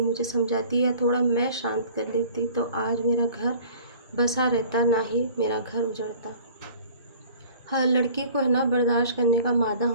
मुझे समझाती है, थोड़ा मैं शांत कर लेती तो आज मेरा घर बसा रहता, ना ही मेरा घर उजड़ता। हर लड़की को है ना बर्दाश्त करने का मादा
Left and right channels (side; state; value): both; inverted; correlation -0.48